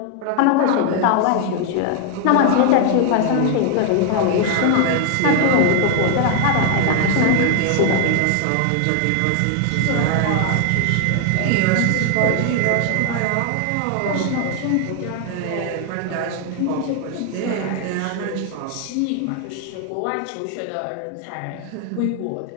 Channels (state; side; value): different; both; correlation 0.00